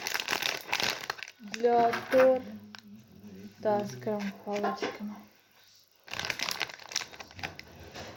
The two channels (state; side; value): identical; both; correlation 1.00